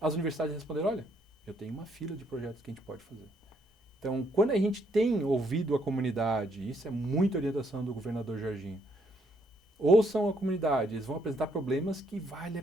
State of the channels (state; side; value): normal; both; correlation 0.71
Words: universidades responderam, olha, eu tenho uma fila de projetos que a gente pode fazer. Então, quando a gente tem ouvido a comunidade, isso é muita orientação do governador Jorginho, ouçam a comunidade, eles vão apresentar problemas que vale a